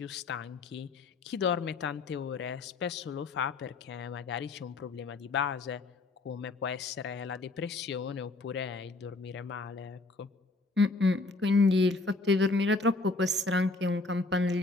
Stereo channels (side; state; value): right; quieter; 3.4 dB